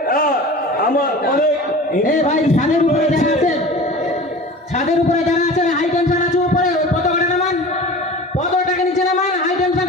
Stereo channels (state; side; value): normal; both; correlation 0.37